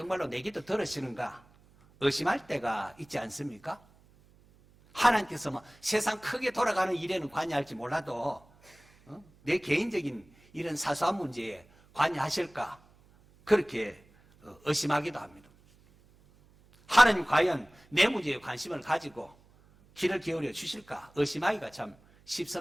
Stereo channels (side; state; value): right; noise; hum, 29 dB below the sound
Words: 내 기도 들으시는가 의심할 때가 있지 않습니까? 하나님께서 뭐 세상 크게 돌아가는 일에는 관여할지 몰라도 내 개인적인 이런 사소한 문제에 관여하실까 그렇게 의심하기도 합니다. 하나님 과연 내 문제에 관심을 가지고 귀를 기울여 주실까 의심하기가 참